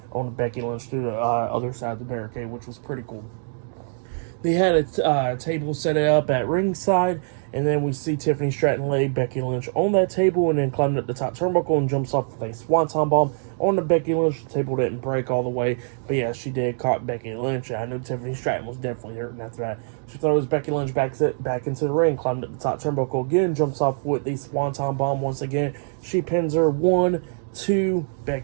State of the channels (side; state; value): left; silent; digital silence